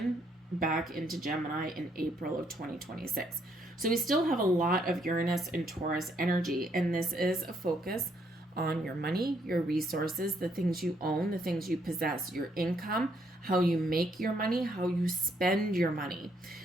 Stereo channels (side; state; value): both; normal; correlation 0.71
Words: back into Gemini in April of 2026. So we still have a lot of Uranus and Taurus energy, and this is a focus on your money, your resources, the things you own, the things you possess, your income, how you make your money, how you spend your money.